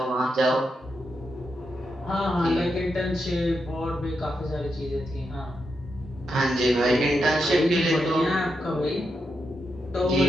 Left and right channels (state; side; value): normal; both; correlation 0.84